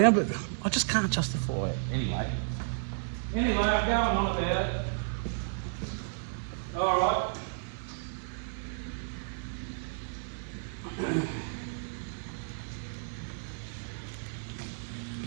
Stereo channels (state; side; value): silent; left; digital silence